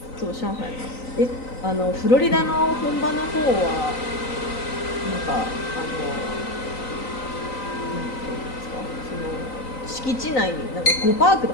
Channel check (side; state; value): right; late; 3.9 ms